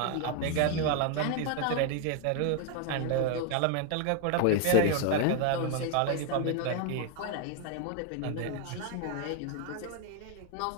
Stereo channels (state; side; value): different; both; correlation 0.01